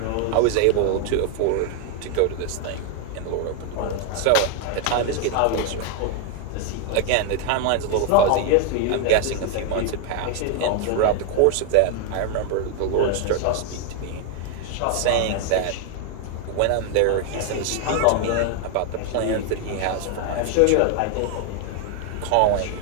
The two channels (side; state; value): both; different; correlation 0.01